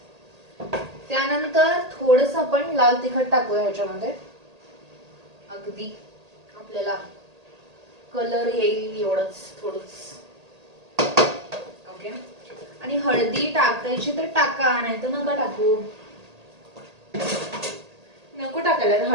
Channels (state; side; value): late; left; 1.8 ms